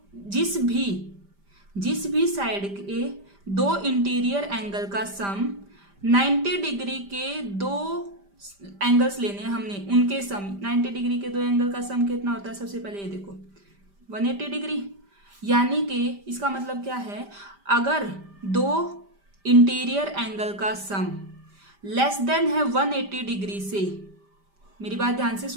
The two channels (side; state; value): left; late; 5.1 ms